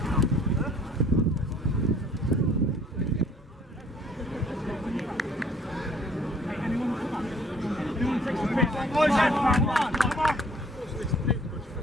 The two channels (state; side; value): normal; both; correlation 0.58